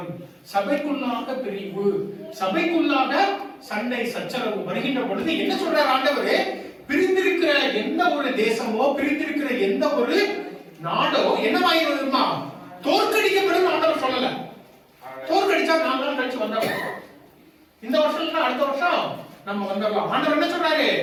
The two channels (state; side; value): identical; both; correlation 1.00